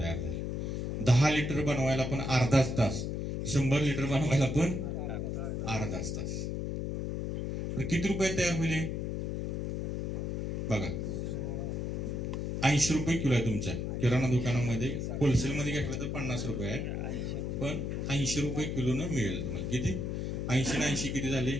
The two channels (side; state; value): left; noise; hum, 2 dB below the sound